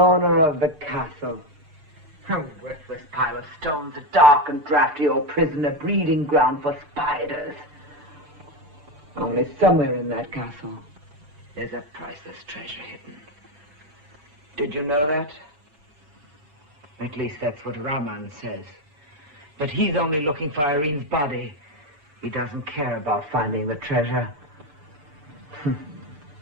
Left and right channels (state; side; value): late; left; 6.8 ms